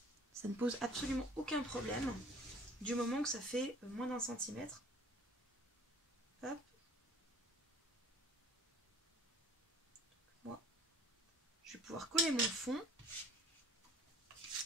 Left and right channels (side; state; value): both; normal; correlation 0.50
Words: Ça ne pose absolument aucun problème du moment que ça fait moins d'1 centimètre. Hop. Moi, je vais pouvoir coller mon fond.